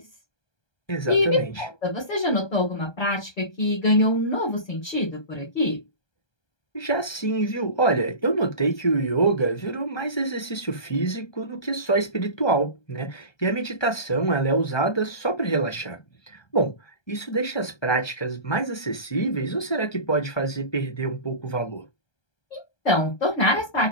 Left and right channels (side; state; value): right; late; 1.3 ms